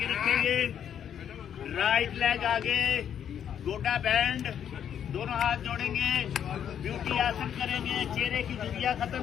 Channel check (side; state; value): right; quieter; 9.0 dB